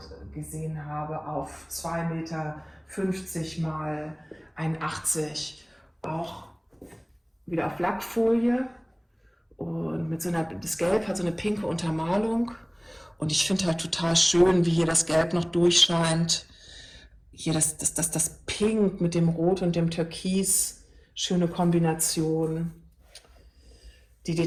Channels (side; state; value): both; identical; correlation 1.00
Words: gesehen habe, auf 2,50 Meter mal 1,80 Meter, auch wieder auf Lackfolie Und das Gelb hat so eine pinke Untermalung. Und ich finde halt total schön, wie hier das Gelb noch durchscheint. Hier das Pink mit dem Rot und dem Türkis. Schöne Kombination. Die